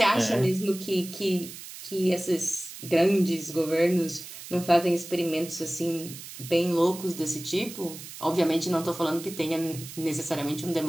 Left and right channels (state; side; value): noise; right; hiss, 13 dB below the sound